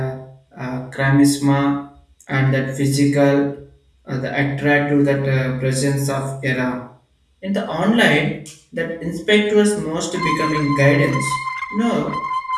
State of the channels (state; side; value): identical; both; correlation 1.00